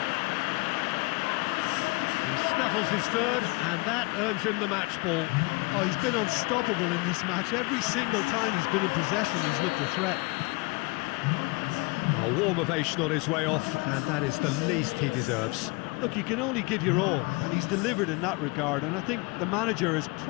He snuffles his third, and that earns him the match ball. Oh, he's been unstoppable in this match. Every single time he's been in possession, he's looked a threat. A warm ovation on his way off, and that is the least he deserves. Look, you can only give your all, and he's delivered in that regard, and I think the manager has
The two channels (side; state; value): right; quieter; 26.8 dB